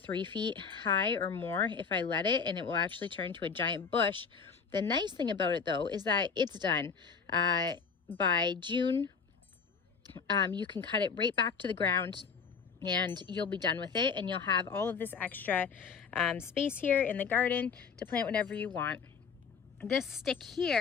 feet high or more if I let it, and it will actually turn to a giant bush. The nice thing about it though is that it's done. By June, you can cut it right back to the ground and you'll be done with it, and you'll have all of this extra space here in the garden to plant whatever you want. This stick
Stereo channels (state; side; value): quieter; right; 5.9 dB